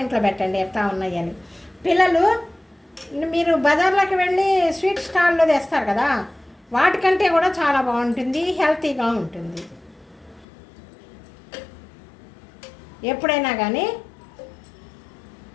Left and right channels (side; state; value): right; drops out; at 10.5 s